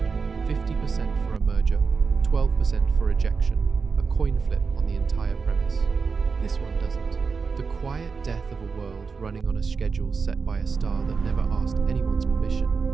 50% for a merger, 12% for ejection, a coin flip on the entire premise. This one doesn't. The quiet death of a world running on a schedule set by a star that never asked anyone's permission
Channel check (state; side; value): quieter; left; 5.1 dB